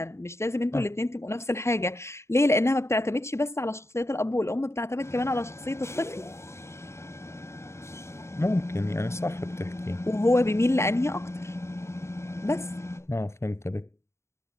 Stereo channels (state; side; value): late; right; 0.13 ms